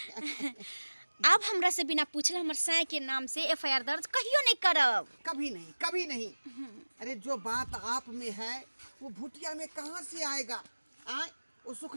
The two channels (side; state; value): both; inverted; correlation -1.00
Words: अब हमरा से बिना पूछले हमर साय के नाम से एफआईआर दर्ज कहियो नहीं करब। कभी नहीं कभी नहीं। अरे जो बात आप में है वो भुटिया में कहाँ से आएगा आए वो